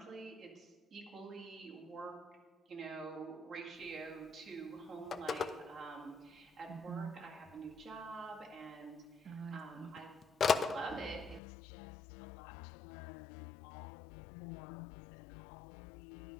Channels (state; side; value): drops out; right; at 11.4 s